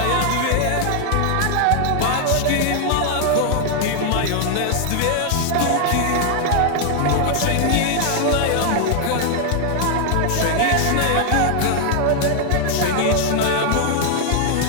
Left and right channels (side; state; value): both; different; correlation 0.00